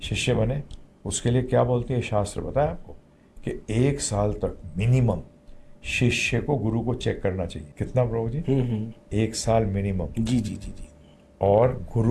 शिष्य बने, उसके लिए क्या बोलते हैं शास्त्र बताया आपको कि 1 साल तक मिनिमम शिष्य को गुरु को चेक करना चाहिए। कितना प्रभु जी? 1 साल मिनिमम। जी। और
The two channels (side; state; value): both; identical; correlation 1.00